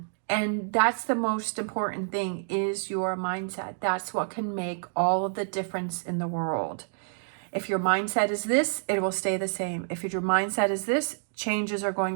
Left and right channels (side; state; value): left; silent; digital silence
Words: And that's the most important thing, is your mindset. That's what can make all of the difference in the world. If your mindset is this, it will stay the same. If your mindset is this, changes are